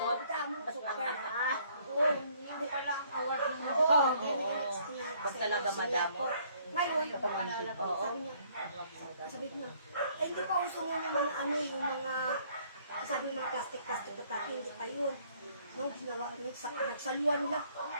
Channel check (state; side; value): inverted; both; correlation -0.62